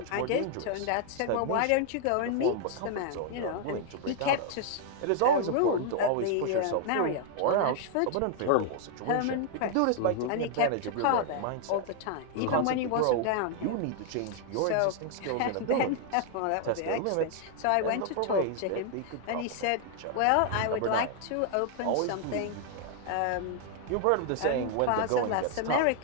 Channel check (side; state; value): both; different; correlation 0.00